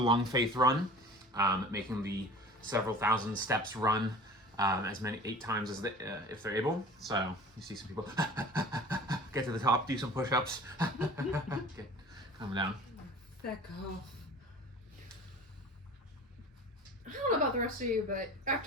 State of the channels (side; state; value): both; normal; correlation 0.42